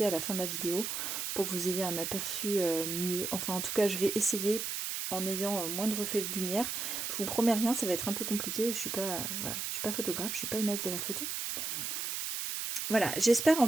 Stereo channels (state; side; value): noise; right; hiss, 3 dB below the sound